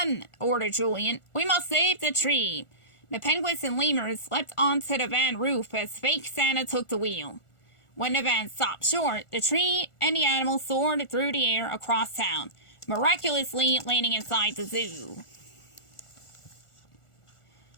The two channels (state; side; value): late; right; 1.4 ms